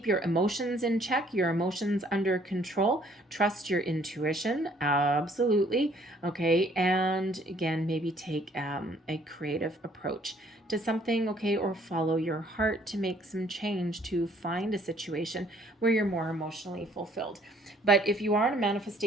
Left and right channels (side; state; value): both; normal; correlation 0.61